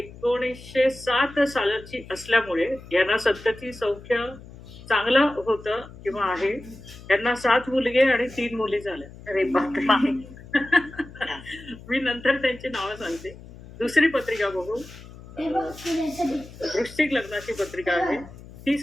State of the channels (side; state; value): left; noise; hum, 18 dB below the sound